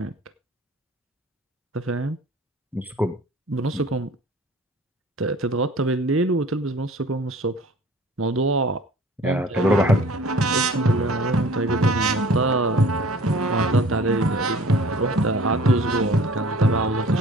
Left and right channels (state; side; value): normal; both; correlation 0.48